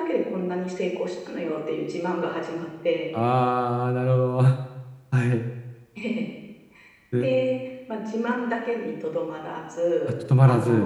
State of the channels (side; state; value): both; identical; correlation 1.00